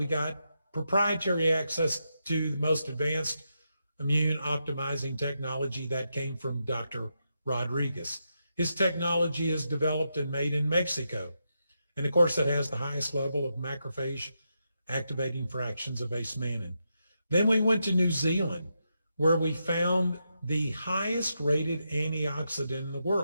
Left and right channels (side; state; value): both; inverted; correlation -0.84